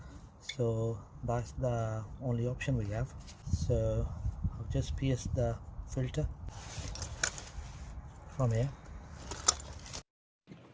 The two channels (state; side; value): identical; both; correlation 1.00